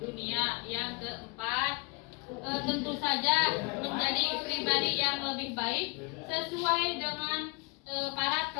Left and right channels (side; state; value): right; quieter; 29.6 dB